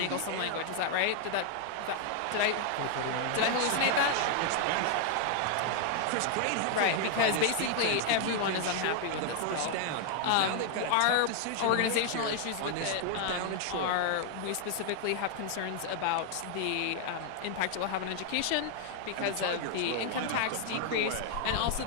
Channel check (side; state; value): both; different; correlation 0.00